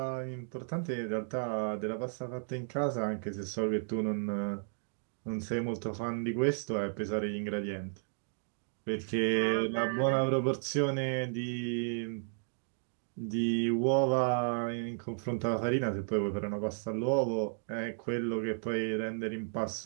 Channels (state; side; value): silent; left; digital silence